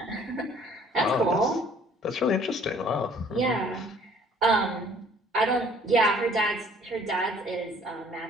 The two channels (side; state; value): both; normal; correlation 0.57